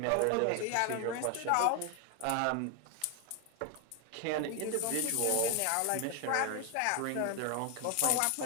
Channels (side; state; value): both; different; correlation 0.01